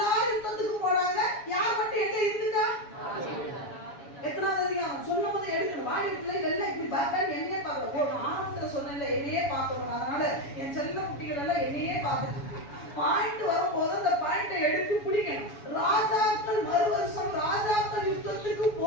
யுத்தத்துக்கு போனாங்க. யார் மட்டும் எங்க இருந்துட்டா? எத்தனாவது அதிகம் சொன்ன போது எடுக்கணும். வாடி வீட்டுல எல்லாம் இப்படி பார்க்க என்னையே பார்க்கல. ஆரம்பத்துல சொன்னேன்ல என்னையே பார்க்கணும். அதனால என் செல்ல குட்டிகள் எல்லாம் என்னையே பார்த்துட்டு பாயிண்ட் வரும்போது அந்த பாயிண்டை எடுத்து பிடிக்கணும். ராஜாக்கள் மறு வருஷம் ராஜாக்கள் யுத்தத்துக்கு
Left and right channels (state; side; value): late; right; 7.1 ms